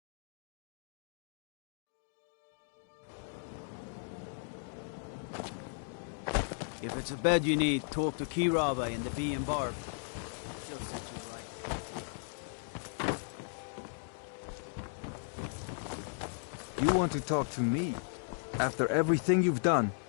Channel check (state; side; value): silent; right; digital silence